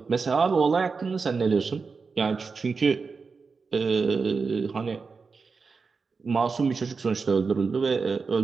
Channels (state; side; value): quieter; left; 4.8 dB